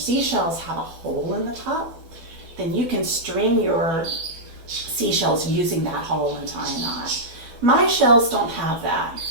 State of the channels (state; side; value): late; left; 12 ms